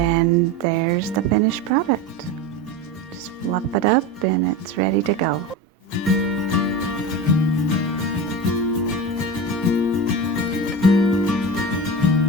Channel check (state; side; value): normal; both; correlation 0.26